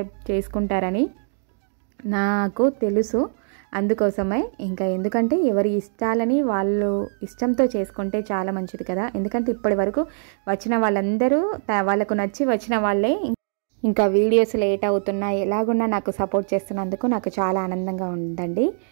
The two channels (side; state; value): left; silent; digital silence